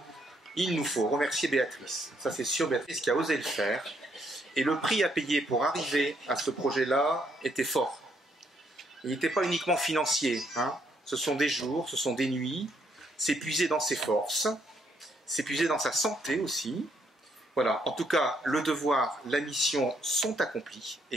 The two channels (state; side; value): normal; both; correlation 0.72